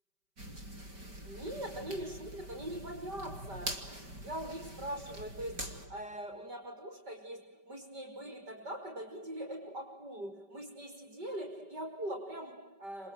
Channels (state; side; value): late; left; 5.1 ms